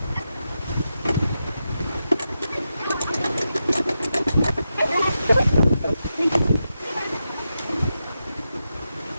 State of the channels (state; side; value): inverted; both; correlation -0.88